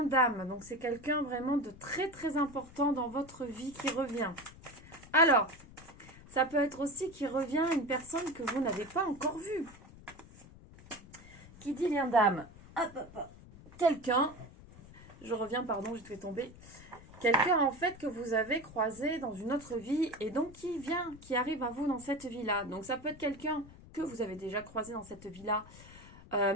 d'âme, donc c'est quelqu'un vraiment de très très important dans votre vie qui revient. Alors, ça peut être aussi qui revient une personne que vous n'avez pas encore vue. Qui dit lien d'âme? Quelqu'un, je reviens, pardon, j'ai fait tomber. Quelqu'un en fait que vous avez croisé dans une autre vie et donc qui arrive à vous dans cette vie-là. Donc ça peut être quelqu'un que vous avez déjà croisé dans cette vie-là,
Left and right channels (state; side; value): noise; left; rumble, 19 dB below the sound